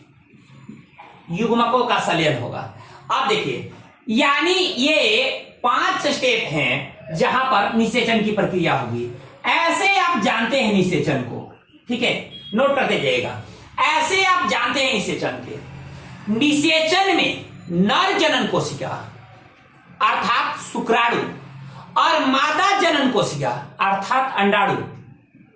युग्मकों का संलयन होगा। अब देखिए, यानी ये 5 स्टेप हैं जहां पर निषेचन की प्रक्रिया होगी। ऐसे आप जानते हैं निषेचन को, ठीक है, नोट करते जाइएगा। ऐसे आप जानते हैं निषेचन के। निषेचन में नर जनन कोशिका अर्थात शुक्राणु और मादा जनन कोशिका अर्थात अंडाणु।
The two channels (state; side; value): identical; both; correlation 1.00